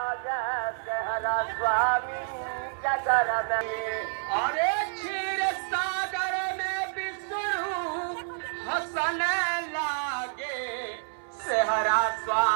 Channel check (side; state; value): left; silent; 59 dB below the other